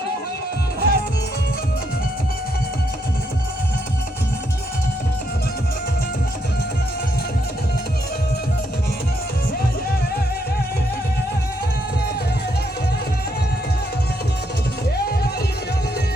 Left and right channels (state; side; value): normal; both; correlation 0.76